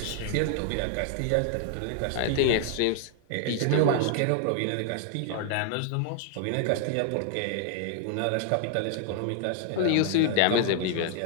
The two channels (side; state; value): both; different; correlation 0.00